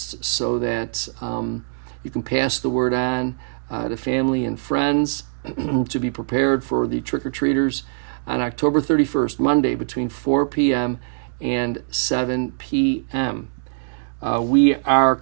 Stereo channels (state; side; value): silent; left; digital silence